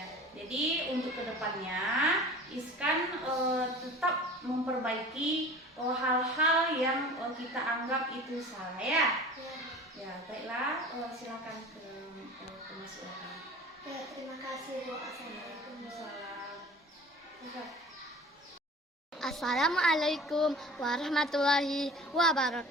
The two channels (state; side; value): normal; both; correlation 0.41